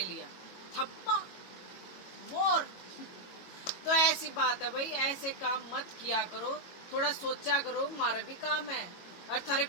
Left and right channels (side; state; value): right; late; 22 ms